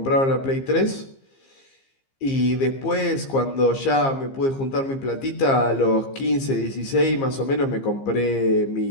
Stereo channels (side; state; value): right; late; 15 ms